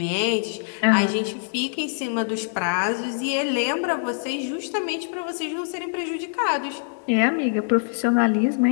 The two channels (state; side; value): silent; right; digital silence